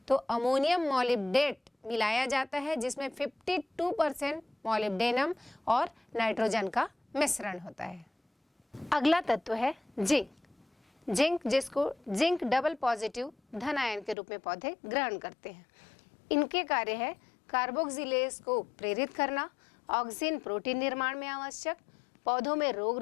तो अमोनियम मॉलिब्डेट मिलाया जाता है जिसमें 52% मॉलिब्डेनम और नाइट्रोजन का मिश्रण होता है। अगला तत्व है जिंक, जिसको जिंक डबल पॉजिटिव धन आयन के रूप में पौधे ग्रहण करते हैं। इनके कार्य है कार्बोक्सिलेज को प्रेरित करना, ऑक्सिन प्रोटीन निर्माण में आवश्यक, पौधों में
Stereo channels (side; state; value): right; drops out; at 14.2 s